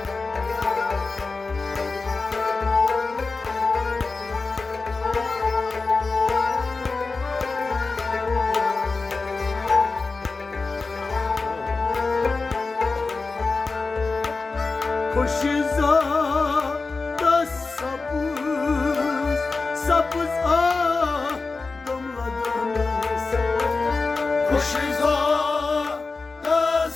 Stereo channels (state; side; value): quieter; right; 4.0 dB